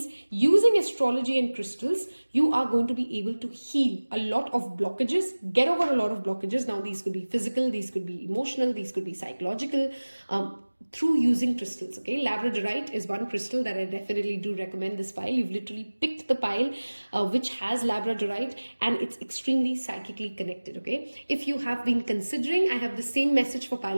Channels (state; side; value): inverted; both; correlation -1.00